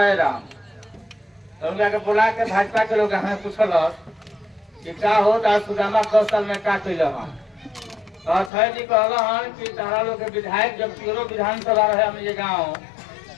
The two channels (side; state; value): right; drops out; at 8.5 s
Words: है राम तो उनका के बुला के भाजपा के लोग हमें पूछल कि का हो सुदामा 10 साल में का कैल तो अक्षय जी कहल कि तारा लोग के विधायक जब पियरो विधानसभा रहे हमने गाँव